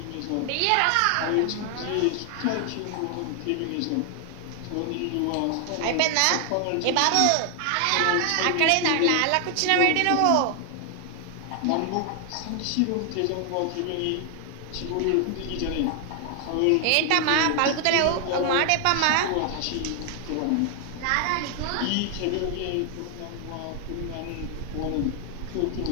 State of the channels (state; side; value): different; both; correlation 0.00